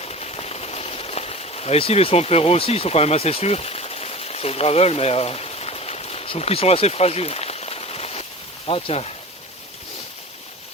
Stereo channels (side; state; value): both; normal; correlation 0.36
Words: Là, ici, les Swamp Hero aussi, ils sont quand même assez sûrs sur le gravel, mais je trouve qu'ils sont assez fragiles. Ah, tiens.